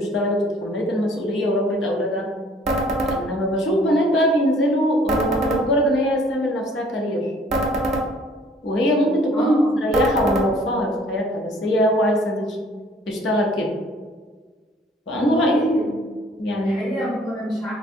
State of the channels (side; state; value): both; normal; correlation 0.57